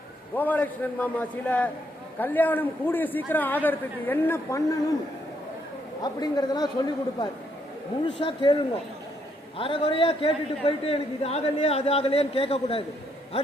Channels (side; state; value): both; normal; correlation 0.73